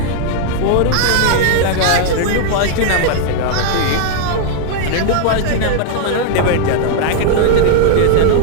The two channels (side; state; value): both; different; correlation 0.00